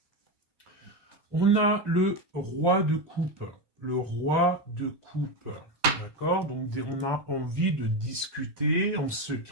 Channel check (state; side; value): late; left; 1.2 ms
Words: On a le roi de coupe. Le roi de coupe. D'accord? Donc, on a envie de discuter en